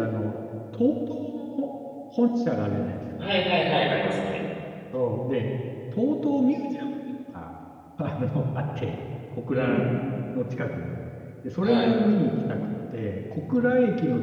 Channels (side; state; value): both; identical; correlation 1.00